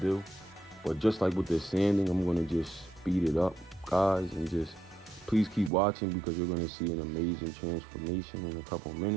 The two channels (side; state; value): left; drops out; at 5.7 s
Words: but just like with the sanding, I'm gonna just speed it up, guys, and just please keep watching because you're going to see an amazing transformation in a couple